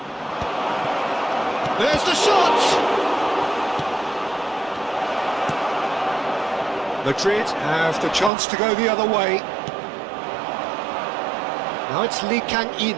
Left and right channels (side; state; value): left; drops out; at 8.3 s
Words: There's the shot! Madrid have the chance to go the other way. Now it's Lee Kang-in.